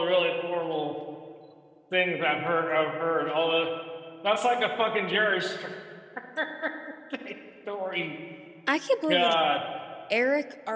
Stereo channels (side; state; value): both; identical; correlation 1.00